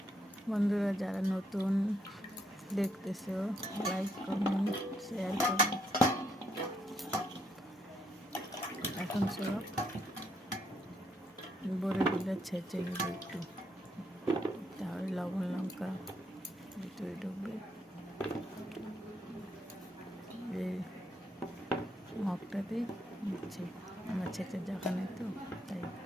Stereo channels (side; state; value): both; normal; correlation 0.74